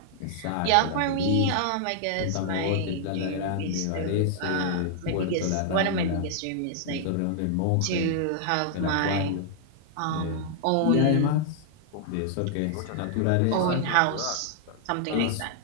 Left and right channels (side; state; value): both; different; correlation -0.01